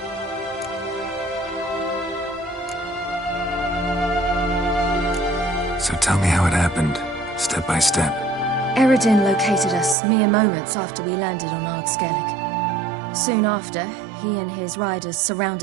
So tell me how it happened, step by step. Eredin located us mere moments after we landed on Ard Skellig. Soon after, he and his riders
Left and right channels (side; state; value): left; drops out; at 10.0 s